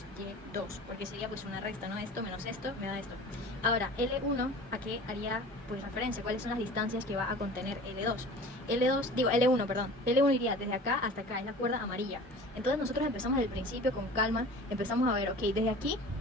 Y2, porque sería pues una resta, ¿no? Esto menos esto me da esto. Ahora, L1, ¿a qué haría pues referencia? ¿Cuáles son las distancias que va a contener L2? L1, perdón. L1 iría desde acá hasta acá, es la cuerda amarilla. Entonces nosotros empezamos desde el principio con calma, empezamos a ver, ok, desde aquí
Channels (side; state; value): both; normal; correlation 0.40